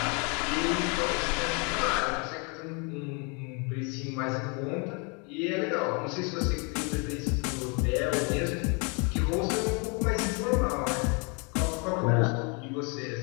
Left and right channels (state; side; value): quieter; right; 33.5 dB